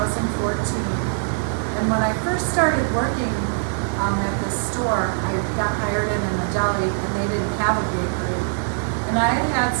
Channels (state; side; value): silent; left; digital silence